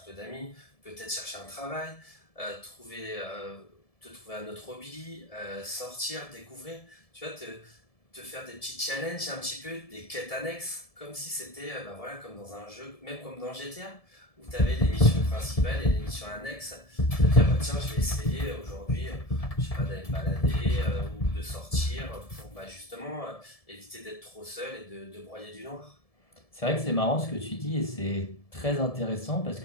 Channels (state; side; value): late; right; 1.7 ms